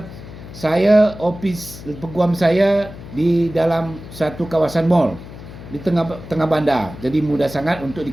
Saya ofis peguam saya di dalam satu kawasan mall di tengah bandar. Jadi mudah sangat untuk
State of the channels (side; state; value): left; noise; hum, 14 dB below the sound